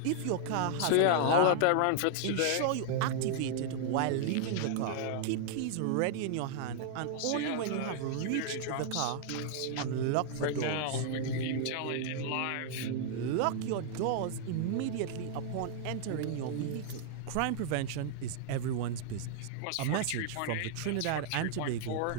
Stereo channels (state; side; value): different; both; correlation -0.01